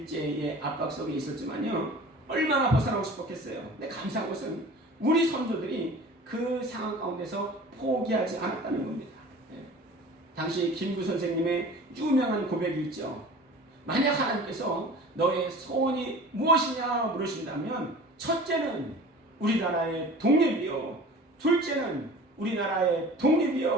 압박 속에 있었지만요 얼마나 벗어나고 싶었겠어요. 근데 감사한 것은 우리 선조들이 그 상황 가운데서 포기하지 않았다는 겁니다. 예. 당시 김구 선생님의 유명한 고백이 있죠. 만약 하나님께서 너의 소원이 무엇이냐 물으신다면 첫째는 우리나라의 독립이요, 둘째는 우리나라의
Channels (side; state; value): both; normal; correlation 0.42